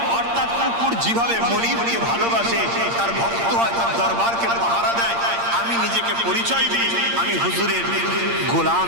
অর্থাৎ কুকুর যেভাবে মনিবকে ভালোবাসে, তার ভক্ত হয়, তার দরবারকে পাহারা দেয়। আমি নিজেকে পরিচয় দিই আমি হুজুরের গোলাম,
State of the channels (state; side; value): late; left; 8.7 ms